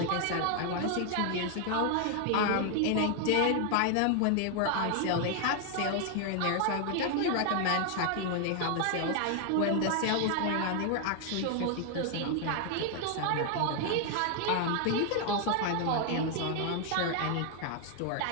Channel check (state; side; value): different; both; correlation 0.00